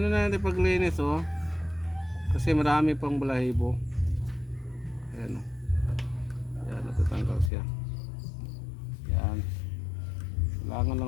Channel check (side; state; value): right; drops out; at 7.5 s